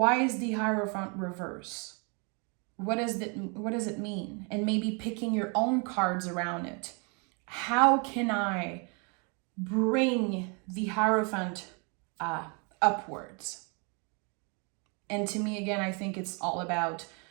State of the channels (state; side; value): quieter; left; 34.3 dB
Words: is the Hierophant reverse? What does it mean? And maybe picking your own cards around it. How can I bring the Hierophant upwards? And to me, again, I think it's all about